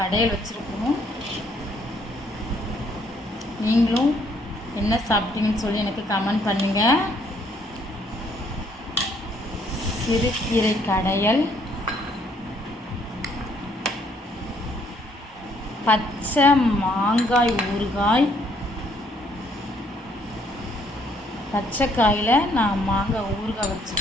வச்சுருக்கோம். நீங்களும் என்ன சாப்பிட்டீங்கன்னு சொல்லி எனக்கு கமெண்ட் பண்ணுங்கள். சிறுகீரை கடையல், பச்சை மாங்காய் ஊறுகாய். பச்சை காயில் நான் மாங்காய் ஊறுகாய்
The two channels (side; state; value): both; normal; correlation 0.67